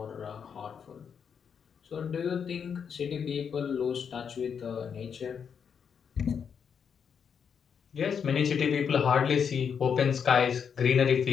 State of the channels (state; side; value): quieter; right; 7.0 dB